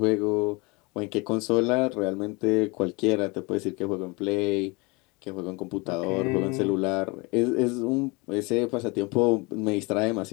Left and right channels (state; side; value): quieter; right; 27.3 dB